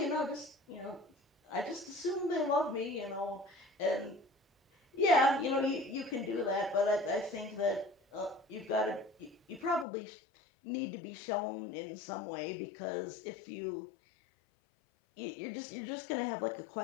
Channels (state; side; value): drops out; right; at 9.9 s